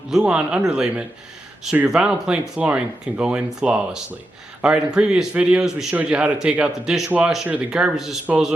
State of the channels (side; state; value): both; normal; correlation 0.87